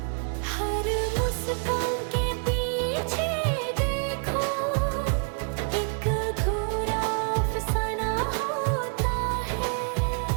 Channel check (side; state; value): left; quieter; 39.8 dB